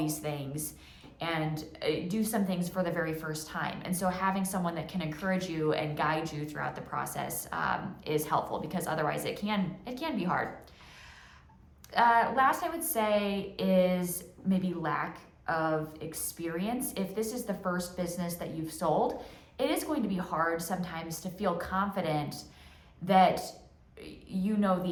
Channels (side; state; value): both; identical; correlation 1.00